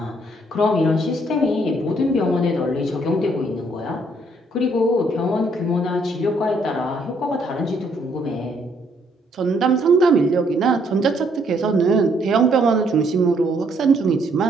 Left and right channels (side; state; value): both; normal; correlation 0.68